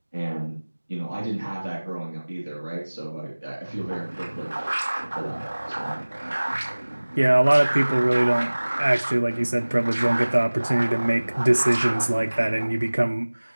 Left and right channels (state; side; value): inverted; both; correlation -1.00